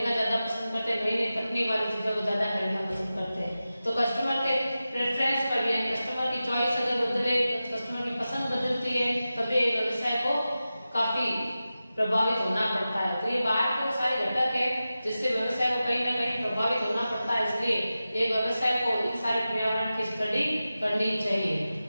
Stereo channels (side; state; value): both; inverted; correlation -0.94